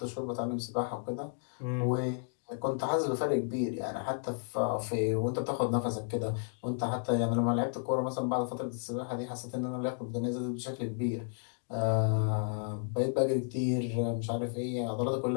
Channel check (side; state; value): right; silent; digital silence